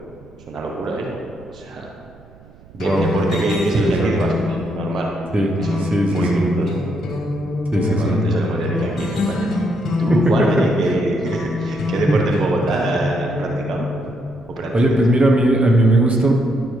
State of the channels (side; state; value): right; noise; rumble, 24 dB below the sound